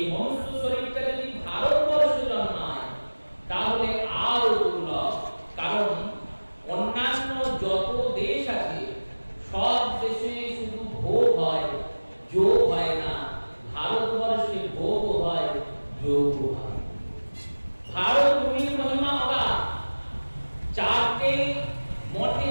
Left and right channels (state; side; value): inverted; both; correlation -1.00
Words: মনুষ্য শরীরটা যদি ভারতবর্ষে জন্মায়, তাহলে আরো দুর্লভ। কারণ অন্যান্য যত দেশ আছে, সব দেশে শুধু ভোগ হয়, যোগ হয় না। ভারতবর্ষে ভোগ হয়, যোগ হয়। ভারত ভূমির মহিমা অগাধ। চারটে মঠে